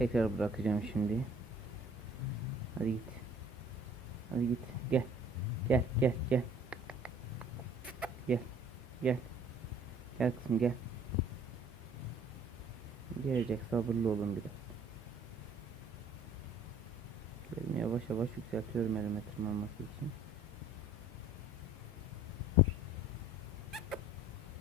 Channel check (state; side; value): normal; both; correlation 0.53